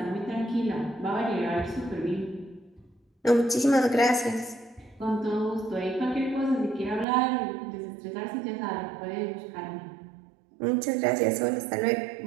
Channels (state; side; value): drops out; left; at 7.1 s